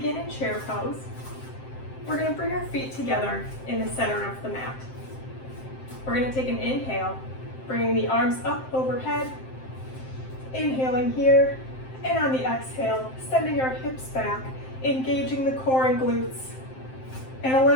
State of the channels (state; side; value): late; right; 7.7 ms